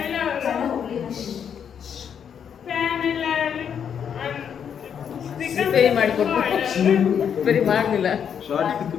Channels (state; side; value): quieter; right; 8.0 dB